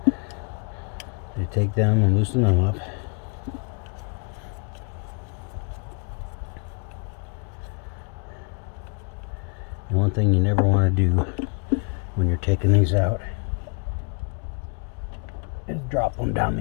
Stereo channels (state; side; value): quieter; right; 34.9 dB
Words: You take them and loosen them up. And one thing you never want to do when you're taking these out is drop them down